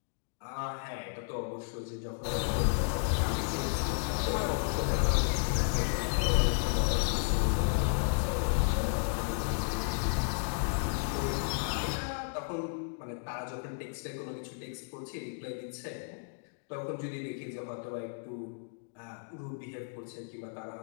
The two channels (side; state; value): right; silent; digital silence